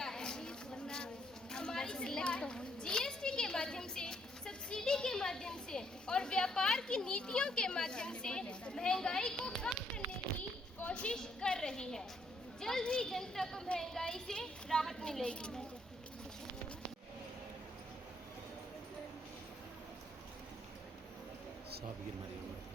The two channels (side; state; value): both; normal; correlation 0.71